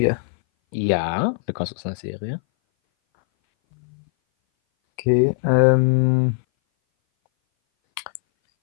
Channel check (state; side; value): silent; right; 60 dB below the other